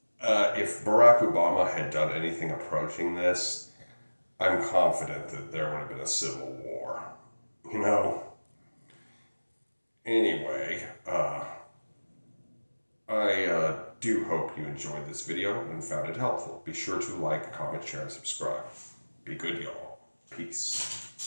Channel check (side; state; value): both; inverted; correlation -1.00